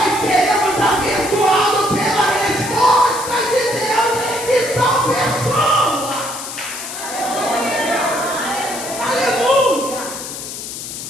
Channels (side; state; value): left; noise; hiss, 8 dB below the sound